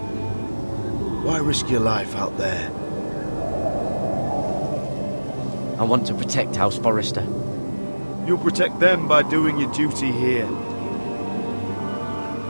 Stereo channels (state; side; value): inverted; both; correlation -1.00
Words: Why risk your life out there? I want to protect House Forrester. You'll protect them by doing your duty here.